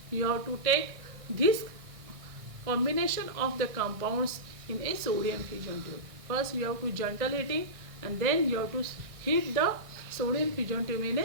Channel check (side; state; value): left; late; 1.6 ms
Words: you have to take this combination of the compounds in a sodium fusion tube. First you have to gentle heating, and then you have to heat the sodium fusion tube in